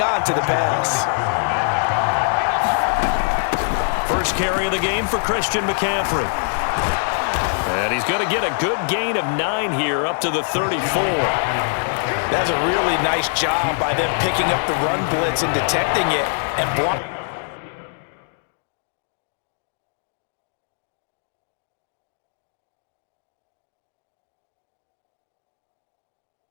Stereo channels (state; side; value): silent; right; 64 dB below the other